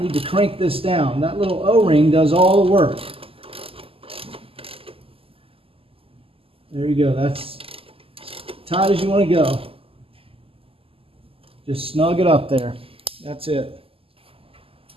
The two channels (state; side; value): late; left; 0.27 ms